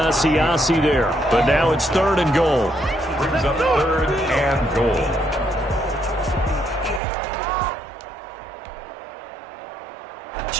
there. But now it's third and goal. Brings up third and goal.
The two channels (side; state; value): left; drops out; at 7.0 s